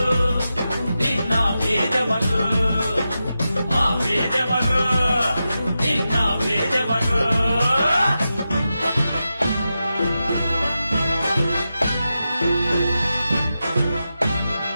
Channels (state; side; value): inverted; both; correlation -0.90